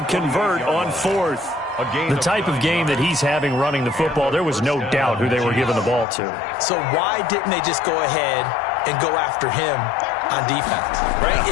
convert on 4th. The type of game that he's having running the football, there was no doubt who they were giving the ball to. So why didn't they just go ahead and go after him on defense, right?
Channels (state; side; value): drops out; right; at 6.1 s